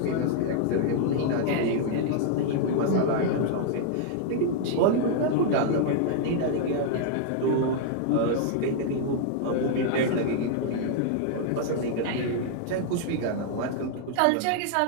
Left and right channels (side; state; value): both; different; correlation -0.01